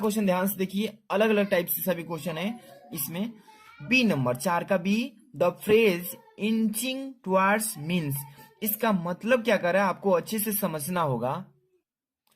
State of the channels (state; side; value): identical; both; correlation 1.00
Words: ध्यान से देखिए, अलग अलग टाइप से सभी क्वेश्चन है इसमें। बी नंबर, 4 का B, the phrase inching towards means. इसका मतलब क्या कर रहा है आपको अच्छे से समझना होगा।